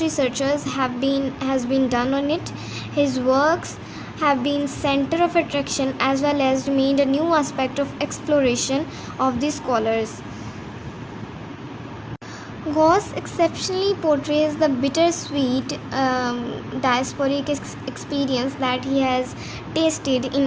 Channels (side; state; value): both; identical; correlation 1.00